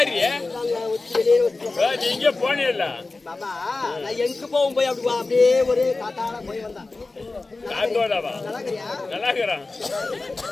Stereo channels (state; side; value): quieter; right; 3.5 dB